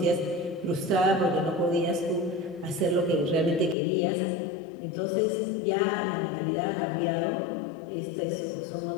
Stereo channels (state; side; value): drops out; right; at 3.8 s